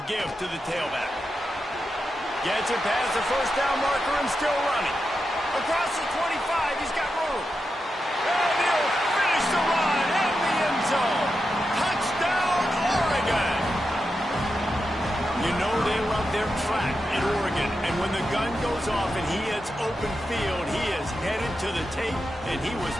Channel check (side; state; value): both; normal; correlation 0.88